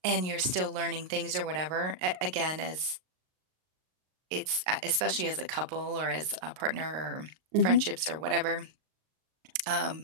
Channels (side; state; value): left; late; 38 ms